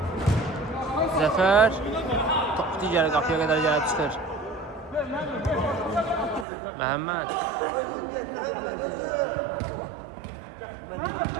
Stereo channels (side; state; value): left; drops out; at 6.5 s